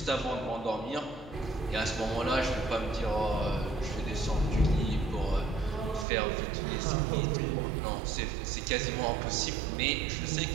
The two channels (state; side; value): drops out; left; at 6.1 s